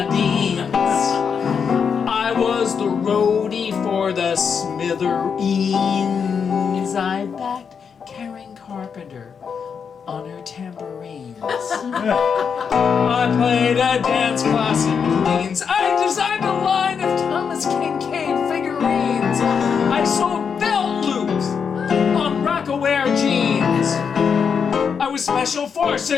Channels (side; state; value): right; quieter; 6.5 dB